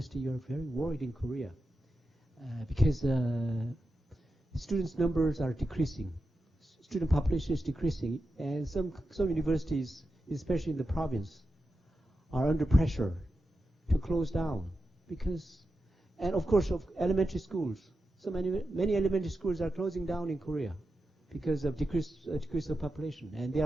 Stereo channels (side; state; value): both; normal; correlation 0.89